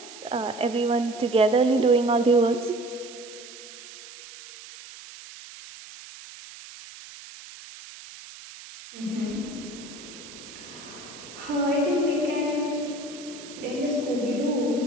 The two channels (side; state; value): right; noise; hiss, 16 dB below the sound